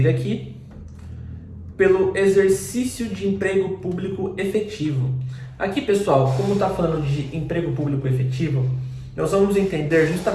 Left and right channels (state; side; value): identical; both; correlation 1.00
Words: aqui. Pelo exercício de emprego público efetivo. Aqui, pessoal, como está falando de emprego público efetivo, nós vamos entender